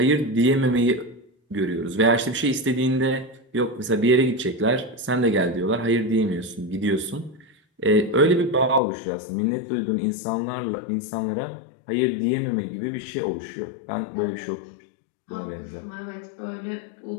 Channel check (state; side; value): drops out; right; at 8.8 s